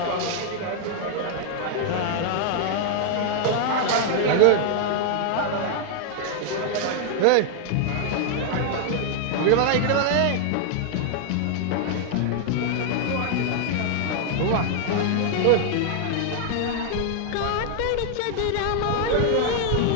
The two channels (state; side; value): different; both; correlation 0.00